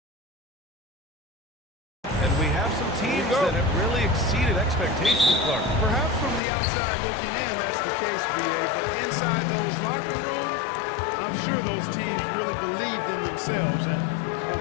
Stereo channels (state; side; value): drops out; right; at 6.4 s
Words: And we have some teams that have really exceeded expectations, Clark. Perhaps from the outside looking in, that's the case, BA. But inside those locker rooms, I'm sure those teams really believed in themselves. And